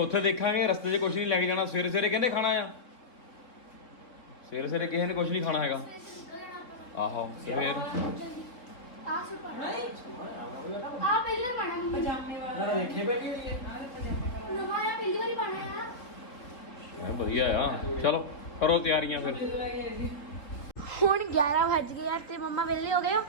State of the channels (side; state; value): right; late; 4.0 ms